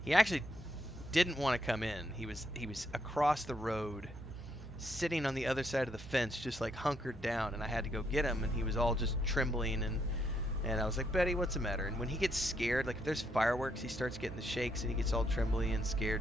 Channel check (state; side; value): normal; both; correlation 0.75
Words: He actually didn't want to come in. He was across the road, sitting on the other side of the fence, just like hunkered down, and I had to go get him, and he was all just trembling, and I was like, Betty, what's the matter? And when he gets scared, like if there's fireworks, he starts getting the shakes and he gets all trembly and